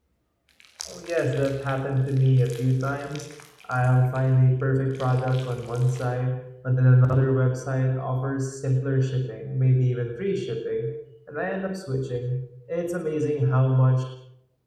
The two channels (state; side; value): identical; both; correlation 1.00